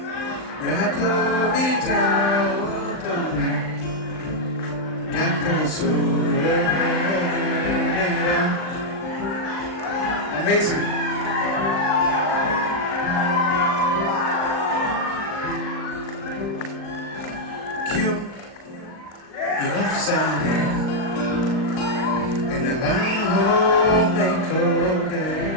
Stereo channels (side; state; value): right; late; 38 ms